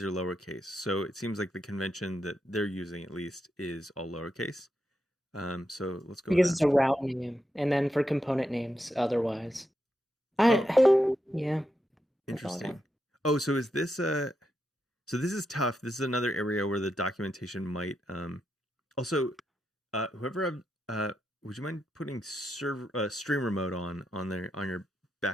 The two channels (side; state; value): both; normal; correlation 0.84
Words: are lowercase. So it seems like the convention that they're using, at least, is all lowercase. So let's go. Because with it's that. a route name, and then for component names, otherwise. Yeah. That's all I Interesting. got. Oh, so is this so this is tough. This is another area where the documentation might also whoever would you mind putting streamer mode on your